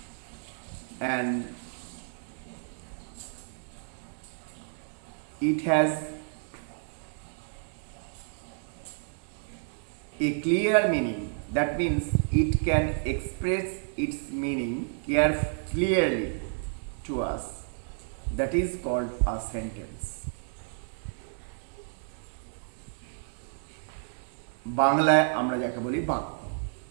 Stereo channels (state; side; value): silent; left; 57 dB below the other